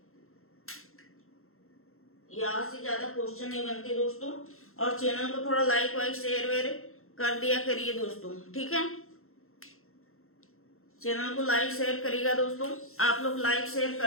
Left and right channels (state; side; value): late; right; 0.62 ms